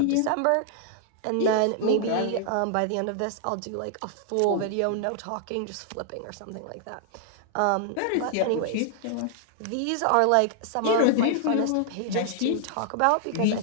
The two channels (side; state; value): both; different; correlation -0.01